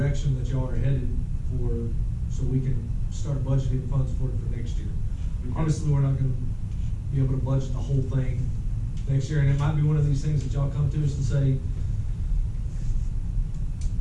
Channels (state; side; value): identical; both; correlation 1.00